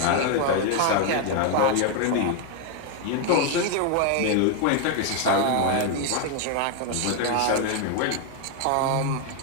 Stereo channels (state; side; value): different; both; correlation 0.01